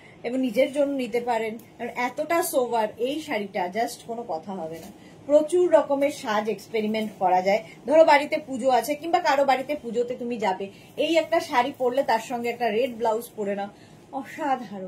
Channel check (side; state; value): both; identical; correlation 1.00